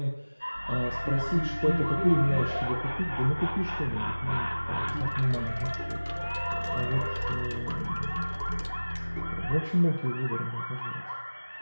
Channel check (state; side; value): inverted; both; correlation -1.00